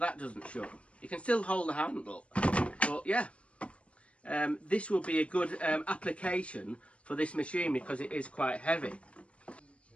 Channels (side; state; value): right; late; 0.061 ms